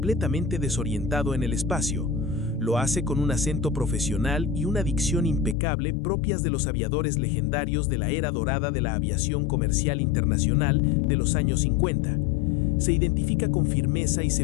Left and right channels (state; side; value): drops out; right; at 5.6 s